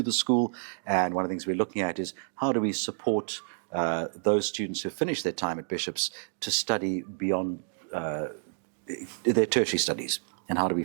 the school. And one of the things we're looking at is how do we support those students who finish their time at Bishops to study beyond their tertiary studies, and how do we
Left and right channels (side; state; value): left; silent; digital silence